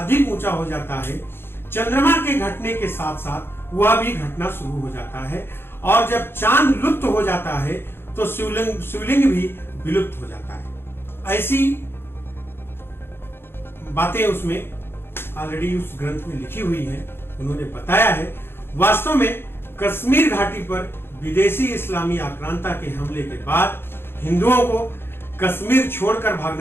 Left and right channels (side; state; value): right; late; 0.11 ms